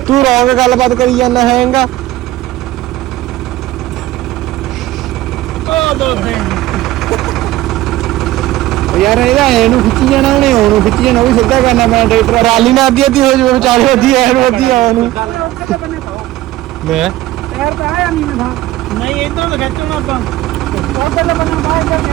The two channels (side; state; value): left; quieter; 15.8 dB